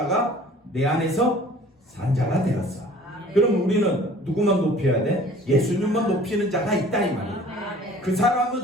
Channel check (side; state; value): both; normal; correlation 0.50